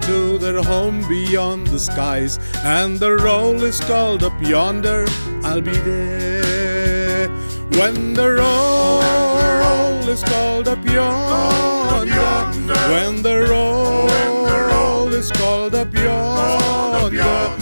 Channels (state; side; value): inverted; both; correlation -0.99